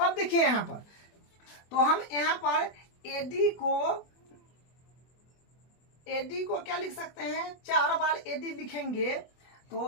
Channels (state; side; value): late; right; 24 ms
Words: देखिए यहाँ पर, तो हम यहाँ पर एडी को क्या लिख सकते हैं, 4 बार एडी लिखेंगे,